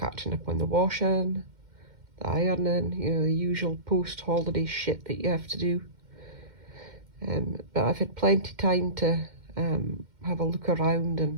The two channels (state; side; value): late; left; 2.1 ms